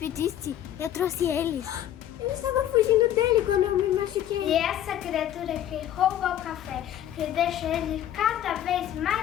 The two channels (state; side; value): quieter; right; 11.5 dB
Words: eu trouxe eles. Eu estava fugindo dele quando eu me machuquei. E essa criatura que rouba o café, que deixa ele cada vez